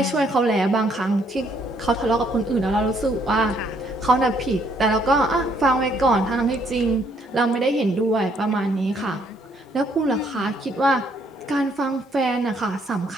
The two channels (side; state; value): both; normal; correlation 0.68